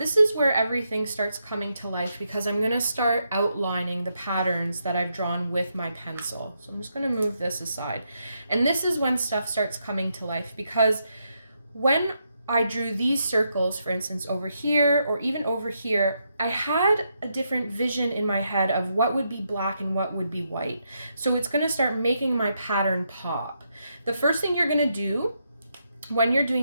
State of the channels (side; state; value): both; inverted; correlation -0.81